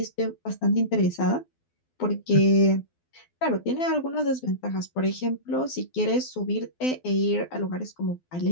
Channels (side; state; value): right; late; 12 ms